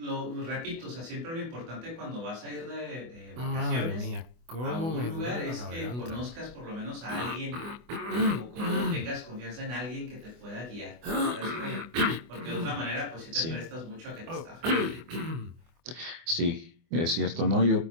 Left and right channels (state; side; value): late; left; 24 ms